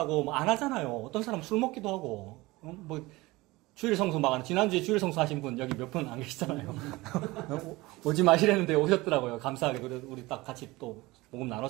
안 하잖아요. 어떤 사람 술 먹기도 하고 주일 성수 막 지난주에 주일 성수 하신 분 여기 몇 분 안 계시잖아요. 오지 마시라는데 오셨더라고요. 감사하게 우리 딱 같이 또 복음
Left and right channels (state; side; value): quieter; left; 21.0 dB